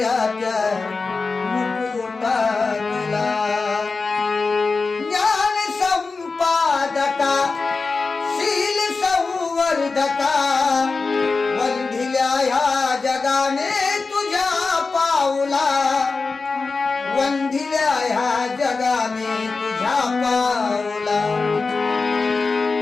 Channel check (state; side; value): quieter; right; 4.2 dB